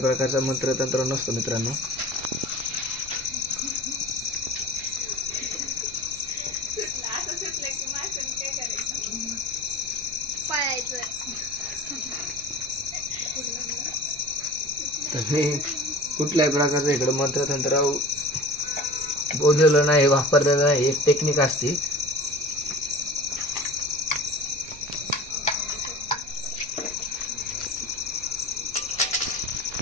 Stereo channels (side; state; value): right; noise; rumble, 21 dB below the sound